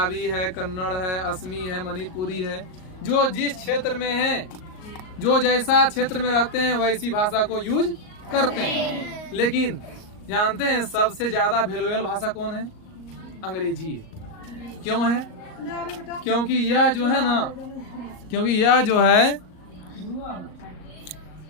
है, कन्नड़ है, असमी है, मणिपुरी है। जो जिस क्षेत्र में है, जो जैसा क्षेत्र में रहते हैं वैसी भाषा को यूज करते हैं। लेकिन जानते हैं सबसे ज्यादा वैल्यूएबल भाषा कौन है? अंग्रेजी है। क्यों है? क्योंकि यह जो है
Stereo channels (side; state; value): right; late; 38 ms